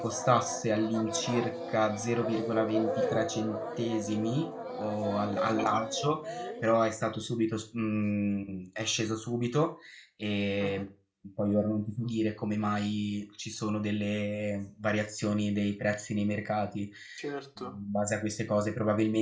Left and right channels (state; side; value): identical; both; correlation 1.00